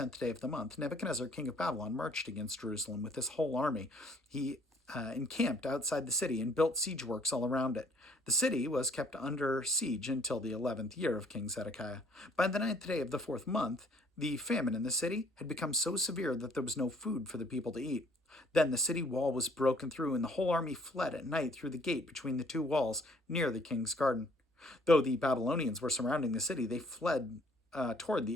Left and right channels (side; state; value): both; normal; correlation 0.61